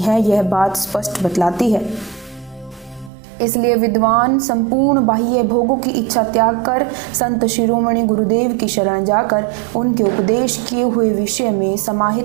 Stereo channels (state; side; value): drops out; left; at 3.1 s